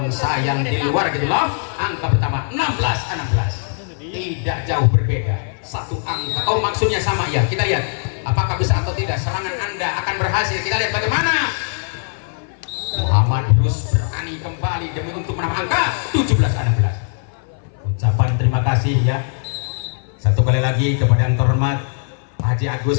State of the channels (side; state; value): right; silent; 58 dB below the other